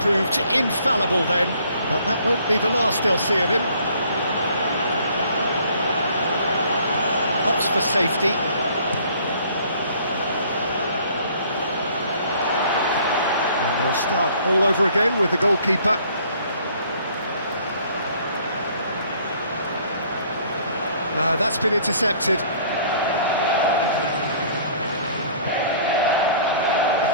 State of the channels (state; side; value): inverted; both; correlation -0.57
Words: infallible then, but that won't be the last they'll see of him. Opts for safety. And they'll start all over again with the goalkeeper. No, that's been intercepted.